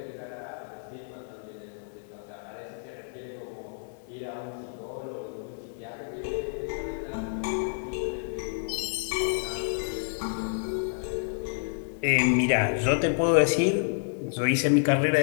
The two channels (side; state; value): right; silent; digital silence